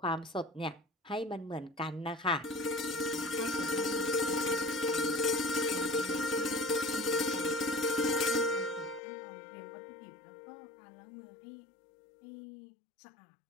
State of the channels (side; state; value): right; drops out; at 9.0 s